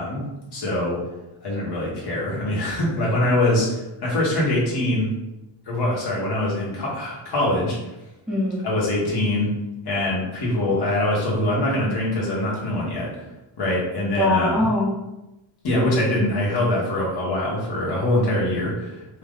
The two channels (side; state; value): both; normal; correlation 0.31